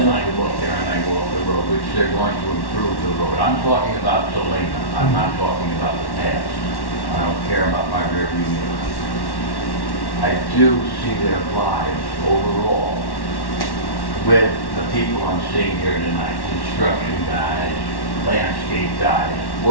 I go up there and I go up the road, which they're going to improve the road. I'm talking about Selena. I'm not talking about the past. I don't care about my rearview mirror. I do see their lives overall with the people I'm seeing here tonight. Construction guys, landscape guys,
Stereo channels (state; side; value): late; right; 1.1 ms